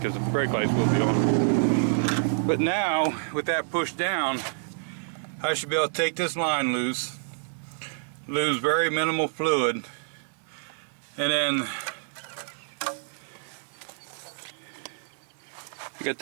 the brake lights will be on. But now, with that pushed down, I should be able to take this line loose, lose very minimal fluid, and then I got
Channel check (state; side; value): silent; left; digital silence